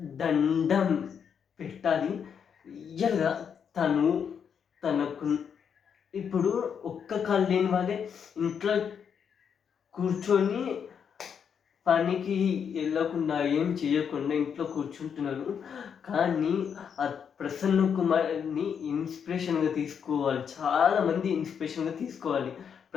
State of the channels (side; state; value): right; quieter; 7.3 dB